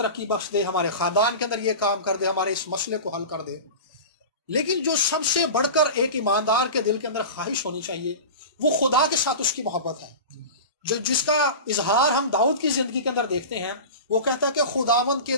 بخش دے، ہمارے خاندان کے اندر یہ کام کر دے، ہمارے اس مسئلے کو حل کر دے۔ لیکن جو سب سے بڑھ کر ایک ایماندار کے دل کے اندر خواہش ہونی چاہیے، وہ خدا کے ساتھ اس کی محبت ہے، جس کا اظہار ہم داؤد کی زندگی کے اندر دیکھتے ہیں۔ وہ کہتا ہے کہ خداوند کے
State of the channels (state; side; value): inverted; both; correlation -0.30